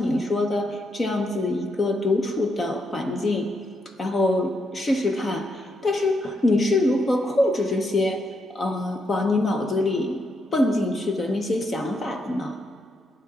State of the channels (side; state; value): both; normal; correlation 0.79